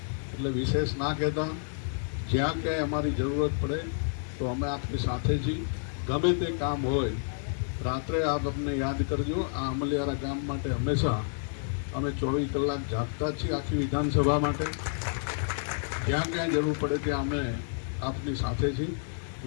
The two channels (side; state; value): right; silent; digital silence